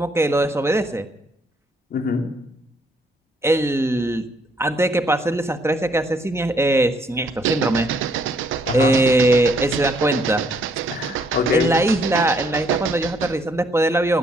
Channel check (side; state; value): both; normal; correlation 0.67